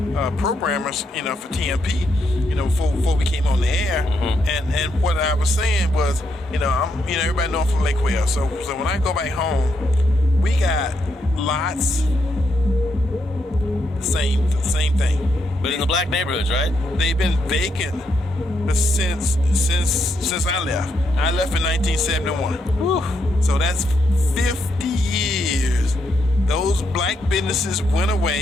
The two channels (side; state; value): both; normal; correlation 0.79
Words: programmers, for TMP, before we came on the air. Mm-hmm. And what I was saying was, everybody know I'm from Lake Wales. So when I go back home, we got lots, the same thing. But in the black neighborhoods, right? They've been vacant since I left. I left in 1971. Whew. So that's 50 years. Those black businesses went